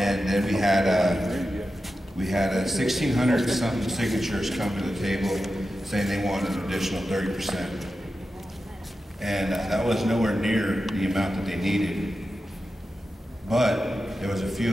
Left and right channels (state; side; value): normal; both; correlation 0.91